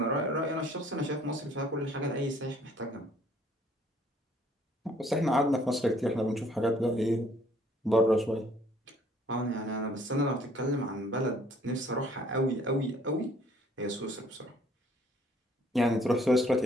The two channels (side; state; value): both; normal; correlation 0.60